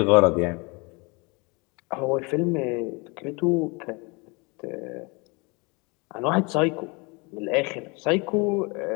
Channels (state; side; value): quieter; right; 28.5 dB